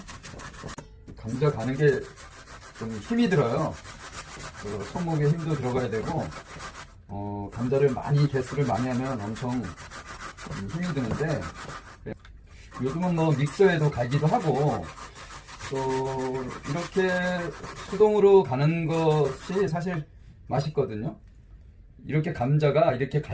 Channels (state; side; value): identical; both; correlation 1.00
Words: 감자 가는 게 좀 힘이 들어요. 손목에 힘도 들어가야 되고 감자를 개수를 많이 하면 엄청 힘이 드는데 요즘은 뭐 믹서에도 갈기도 하고 또 이렇게 수동으로 가는 것이 사실 맛있거든요. 이렇게 감자가 이렇게